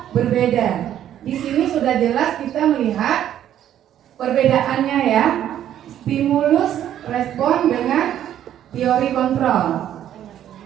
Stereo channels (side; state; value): left; quieter; 11.0 dB